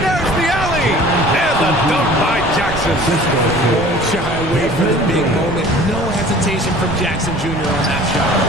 there's the alley. And the dunk by Jackson. Won't shy away from the big moment. No hesitation from Jackson Jr. on that shot.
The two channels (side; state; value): right; noise; rumble, 10 dB below the sound